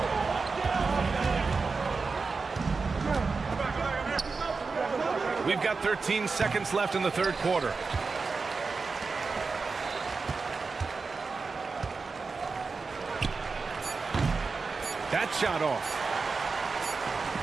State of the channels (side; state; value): left; quieter; 4.4 dB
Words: We've got 13 seconds left in the 3rd quarter. That shot off.